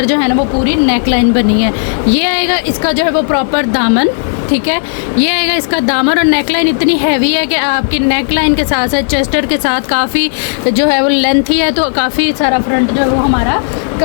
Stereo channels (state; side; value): silent; right; digital silence